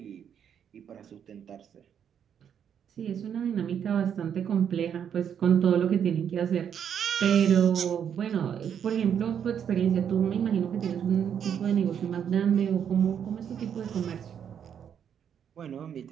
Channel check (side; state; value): left; quieter; 8.4 dB